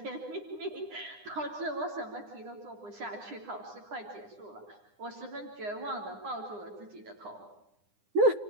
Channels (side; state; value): left; late; 9.8 ms